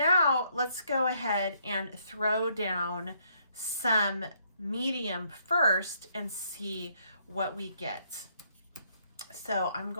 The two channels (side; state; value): both; inverted; correlation -0.70